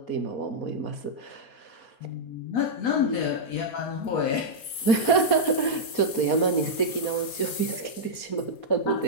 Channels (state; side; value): late; right; 4.2 ms